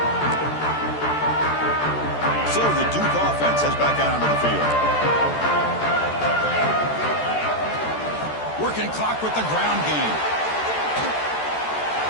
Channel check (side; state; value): right; late; 13 ms